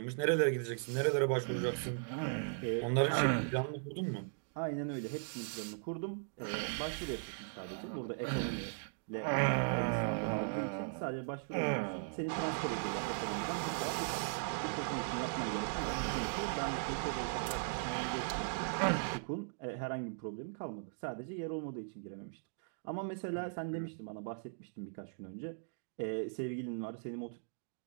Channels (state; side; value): silent; left; digital silence